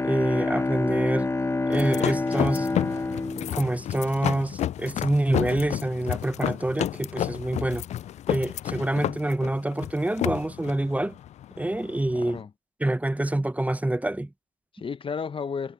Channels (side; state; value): both; normal; correlation 0.84